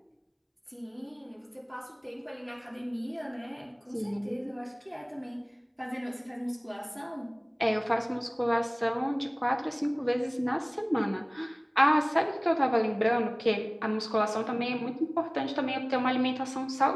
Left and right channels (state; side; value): identical; both; correlation 1.00